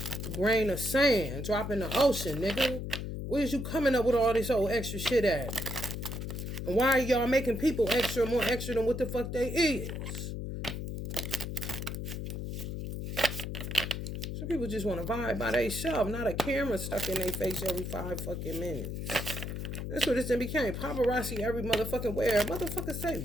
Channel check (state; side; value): noise; left; hum, 5 dB below the sound